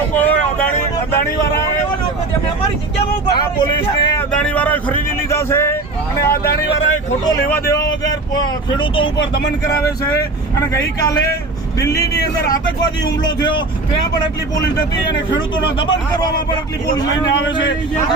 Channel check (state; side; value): quieter; left; 3.2 dB